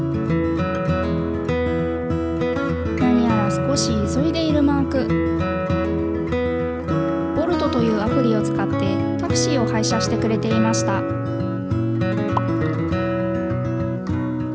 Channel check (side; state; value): both; identical; correlation 1.00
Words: 何やら少し急いでいるマーク。ボルトというアプリを使ってタクシーを配車してくれていました。